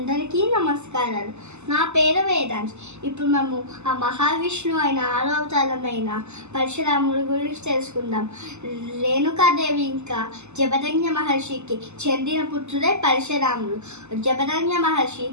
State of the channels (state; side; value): late; left; 0.82 ms